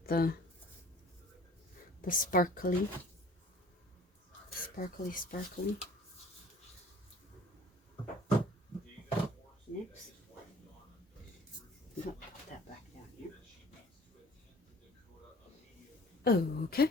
the sparkly. Next. No, that Okay.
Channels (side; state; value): both; normal; correlation 0.49